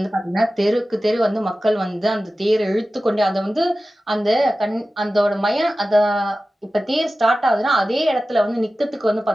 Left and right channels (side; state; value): both; normal; correlation 0.95